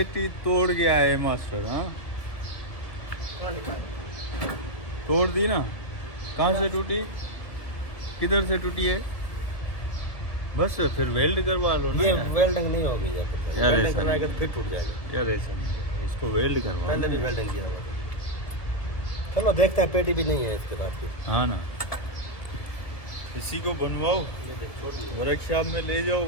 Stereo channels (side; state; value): right; late; 1.7 ms